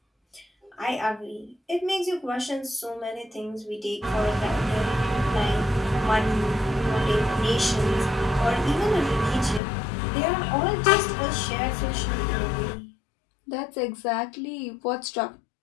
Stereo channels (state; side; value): drops out; right; at 9.6 s